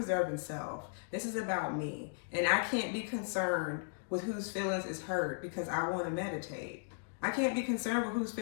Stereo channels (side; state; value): right; silent; digital silence